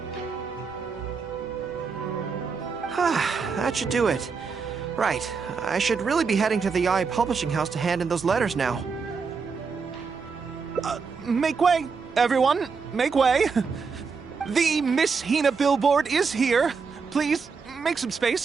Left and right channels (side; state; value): left; quieter; 5.2 dB